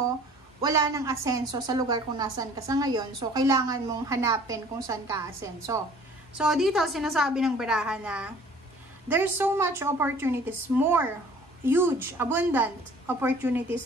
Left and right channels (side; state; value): both; normal; correlation 0.51